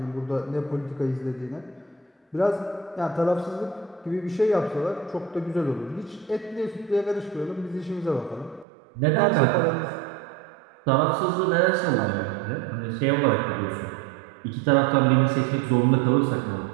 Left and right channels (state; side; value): drops out; left; at 8.7 s